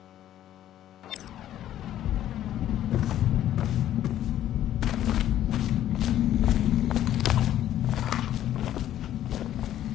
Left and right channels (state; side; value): quieter; right; 12.0 dB